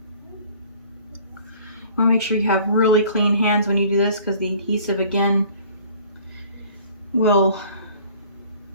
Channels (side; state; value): both; inverted; correlation -0.51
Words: Want to make sure you have really clean hands when you do this, because the adhesive again will